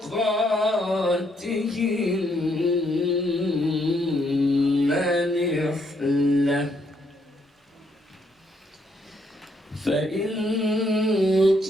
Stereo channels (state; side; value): normal; both; correlation 0.73